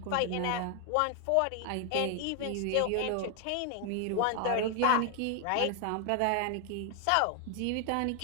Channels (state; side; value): different; both; correlation 0.00